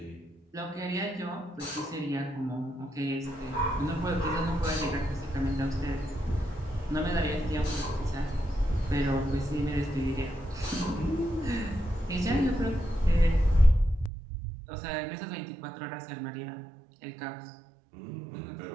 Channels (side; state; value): left; drops out; at 14.1 s